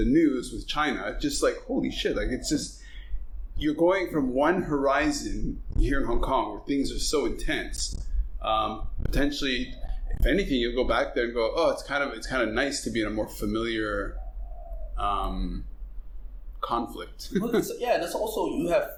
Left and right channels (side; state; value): both; identical; correlation 1.00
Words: news with China? Just like holy shit! Like it's just." You're going from one horizon here in Hong Kong where things are so intense. Potentially, if anything, you'll go back there and go, "Oh, it's kind of nice to be in a more familiar conflict." Well, and that's also